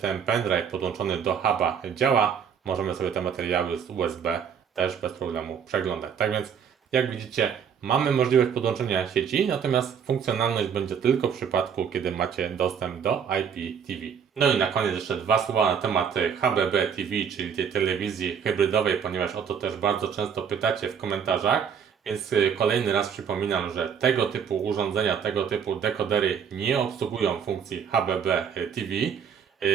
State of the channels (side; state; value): left; quieter; 7.4 dB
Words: pendrive podłączony do huba działa. Możemy sobie te materiały z USB też bez problemu przeglądać. Tak więc jak widzicie, mamy możliwość podłączenia sieci, natomiast funkcjonalność będzie tylko w przypadku, kiedy macie dostęp do IPTV. No i na koniec jeszcze dwa słowa na temat HBB TV, czyli tej telewizji hybrydowej, ponieważ o to też bardzo często pytacie w komentarzach. Więc kolejny raz przypominam, że tego typu urządzenia, tego typu dekodery nie obsługują funkcji HBB TV.